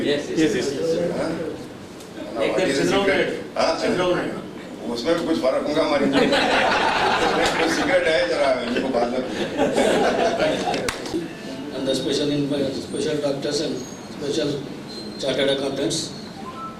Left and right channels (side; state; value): both; identical; correlation 1.00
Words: me. Yes. उसमें भी कुछ फर्क होगा हमारी. Cigarette है जरा इनको बाद में. and the special doctors and special chartered accountants.